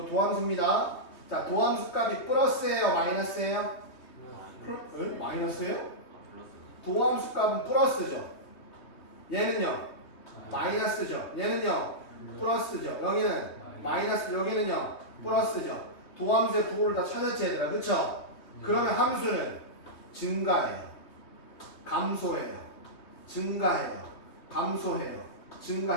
도함수입니다. 자 도함수 값이 플러스예요 마이너스예요? 마이너스예요? 도함수 값은 플러스죠. 얘는요 마이너스죠. 얘는요 플러스죠. 여기는 마이너스, 여기는요 플러스죠. 도함수의 부호를 다 찾았지 얘들아. 그쵸? 그러면 함수는 증가해요, 감소해요, 증가해요, 감소해요,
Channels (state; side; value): late; right; 3.2 ms